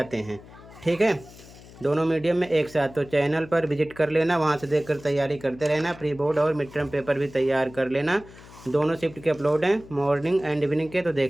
हैं। ठीक है, दोनों मीडियम में एक साथ। तो चैनल पर विजिट कर लेना, वहाँ से देखकर तैयारी करते रहना। प्री बोर्ड और मिड टर्म पेपर भी तैयार कर लेना। दोनों शिफ्ट के अपलोड हैं, मॉर्निंग एंड इवनिंग के, तो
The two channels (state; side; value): noise; left; hum, 20 dB below the sound